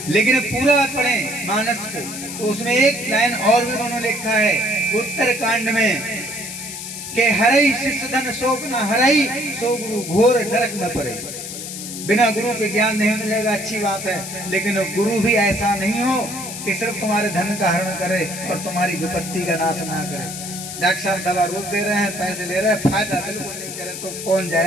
लेकिन पूरा पढ़े मानस को तो उसमें एक लाइन और भी उन्होंने लिखा है उत्तर कांड में कि हरई शिष्य धन शोक न हरई, सो गुरु घोर नरक में पड़े। बिना गुरु के ज्ञान नहीं मिलेगा, अच्छी बात है, लेकिन गुरु भी ऐसा नहीं हो कि सिर्फ तुम्हारे धन का हरण करे और तुम्हारी विपत्ति का नाश ना करे। डॉक्टर साहब दवा रोज दे रहे हैं, पैसे ले रहे हैं, फायदा बिल्कुल नहीं करे तो कौन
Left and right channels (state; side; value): noise; left; hiss, 8 dB below the sound